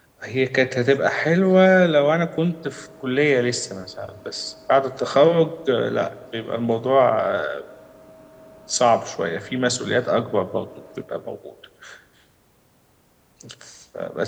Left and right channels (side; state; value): both; identical; correlation 1.00